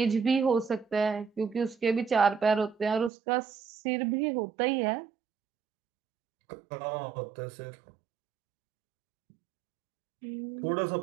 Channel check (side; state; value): left; drops out; at 3.1 s